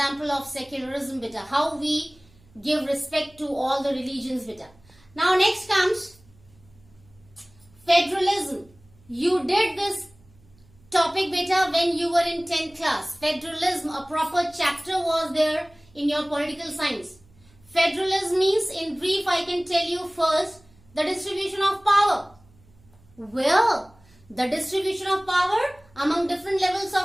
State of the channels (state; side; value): noise; right; hum, 29 dB below the sound